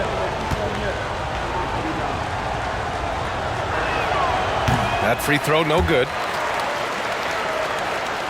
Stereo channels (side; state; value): both; identical; correlation 1.00